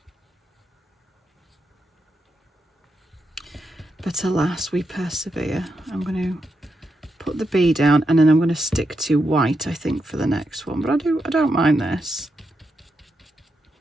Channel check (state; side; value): normal; both; correlation 0.84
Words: But alas, we persevere. I'm going to put the bee down and then I'm going to stick to white, I think, for the next one. But I don't mind this.